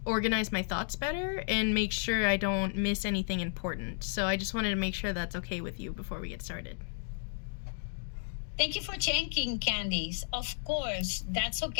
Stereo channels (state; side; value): silent; right; digital silence